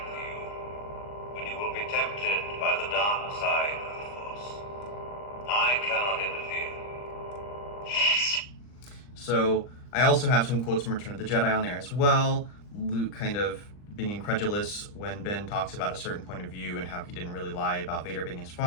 for you, when you will be tempted by the dark side of the Force. I cannot interfere. So I also have some quotes from Return of the Jedi on there as well. Luke kind of being incredulous when Ben talks about a certain point of view and how he didn't really lie about Vader being his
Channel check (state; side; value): late; right; 39 ms